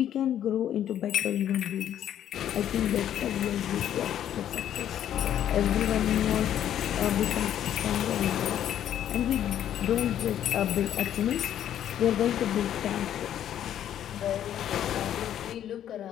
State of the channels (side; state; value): right; quieter; 10.7 dB